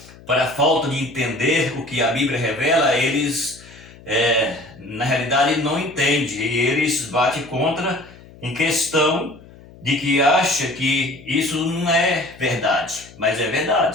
para a falta de entender o que a Bíblia revela, eles, na realidade, não entendem. E eles batem contra em questão de que acha que isso não é verdade, mas é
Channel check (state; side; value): noise; left; hum, 21 dB below the sound